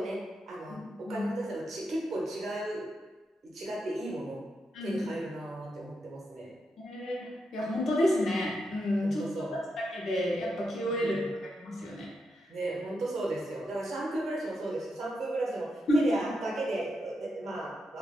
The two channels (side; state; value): both; normal; correlation 0.84